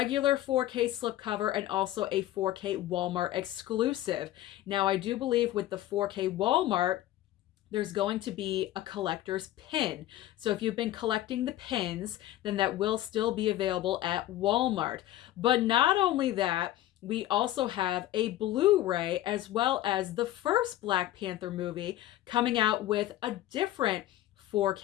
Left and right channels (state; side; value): quieter; right; 14.3 dB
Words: 4K slipcover and also a 4K Walmart exclusive. Now, I do believe with the 4K Walmart, there's going to be a collector's pin. So if you've been collecting the pins, then that will still be available at Walmart. But not only that, we also have a Blu-ray as well as the first Black Panther movie coming out with a different